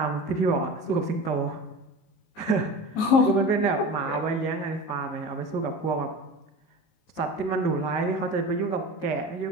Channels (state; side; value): late; right; 19 ms